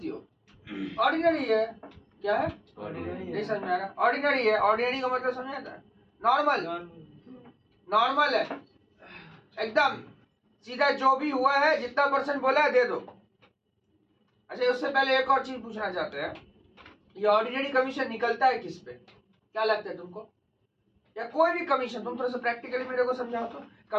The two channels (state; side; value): identical; both; correlation 1.00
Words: हो? ऑर्डिनरी है। क्या है? नहीं समझ में आ रहा? ऑर्डिनरी है। ऑर्डिनरी का मतलब समझ आता है? नॉर्मल। नॉर्मल है एकदम सीधा, जो भी हुआ है जितना % बोला है दे दो। अच्छा, उससे पहले एक और चीज पूछना चाहते हैं, ये ऑर्डिनरी कमीशन निकलता है किस पे? क्या लगता है तुमको? या कोई भी कमीशन, तुम थोड़ा सा प्रैक्टिकली मेरे को समझाओ तो,